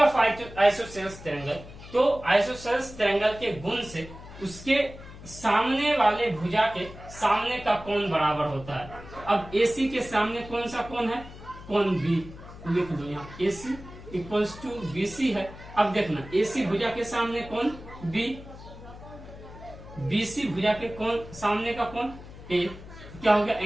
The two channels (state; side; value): noise; left; hum, 16 dB below the sound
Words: isosceles triangle. तो isosceles triangle के गुण से उसके सामने वाले भुजा के सामने का कोण बराबर होता है। अब AC के सामने कौन सा कोण है? कोण B। लिख दो यहाँ AC इक्वल्स टू BC है। अब देखना, AC भुजा के सामने कोण B, BC भुजा के कोण सामने का कोण A। क्या हो गया?